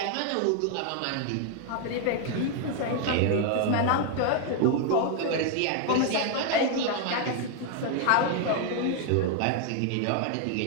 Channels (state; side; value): different; both; correlation 0.00